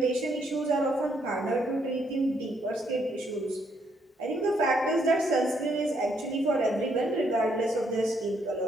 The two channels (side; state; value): both; normal; correlation 0.73